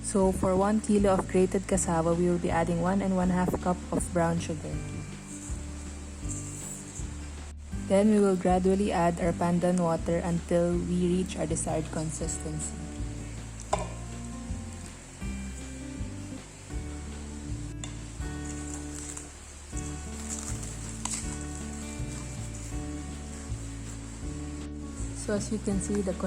So for 1 kilo of grated cassava, we will be adding 1 1/2 cup of brown sugar. Then we will gradually add our pandan water until we reach our desired consistency. So as you can see, the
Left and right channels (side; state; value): both; identical; correlation 1.00